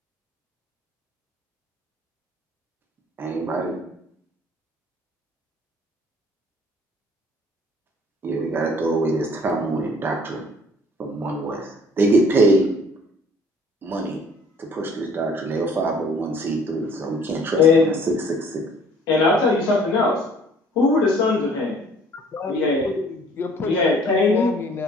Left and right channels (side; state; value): both; normal; correlation 0.55